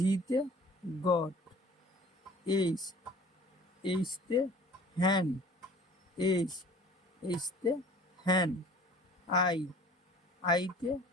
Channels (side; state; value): both; normal; correlation 0.47